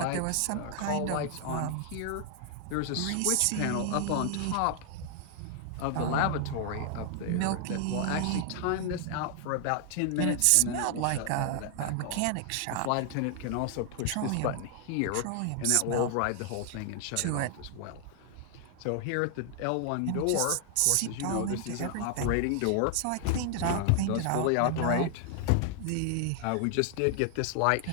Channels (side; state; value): both; different; correlation 0.00